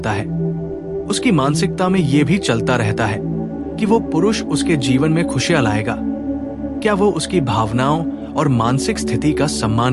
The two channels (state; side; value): identical; both; correlation 1.00